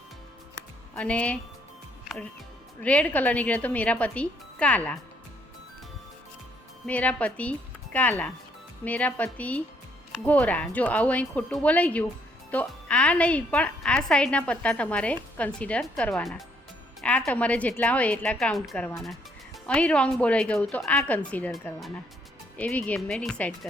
અને રેડ કલર નીકળે તો મેરા પતિ કાલા, મેરા પતિ કાલા, મેરા પતિ ગોરા। જો આવું અહીં ખોટું બોલાઈ ગયું તો આ નહીં પણ આ સાઈડના પત્તા તમારે કન્સિડર કરવાના। આ તમારે જેટલા હોય એટલા કાઉન્ટ કરવાના। અહીં રોંગ બોલાઈ ગયું તો આ કન્સિડર કરવાના। એવી ગેમ મેં ડિસાઈડ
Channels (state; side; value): normal; both; correlation 0.69